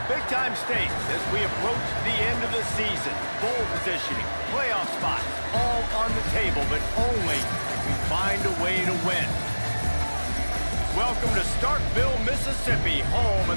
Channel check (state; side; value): inverted; both; correlation -1.00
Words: Big-time stakes as we approach the end of the season. Bowl positioning, playoff spots, all on the table, but only if we find a way to win. Welcome to Starkville, Mississippi, home